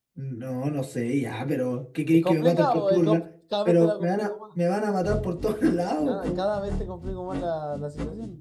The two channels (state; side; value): identical; both; correlation 1.00